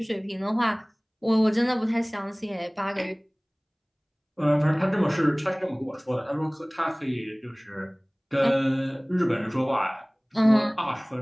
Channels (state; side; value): identical; both; correlation 1.00